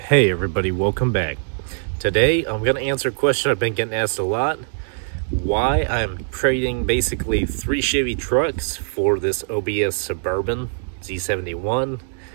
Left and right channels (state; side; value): silent; left; digital silence